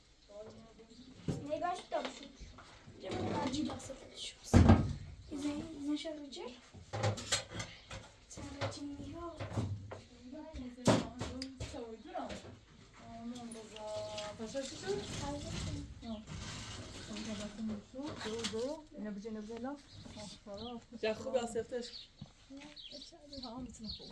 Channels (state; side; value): identical; both; correlation 1.00